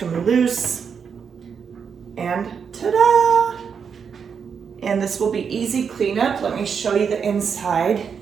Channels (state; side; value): quieter; left; 6.6 dB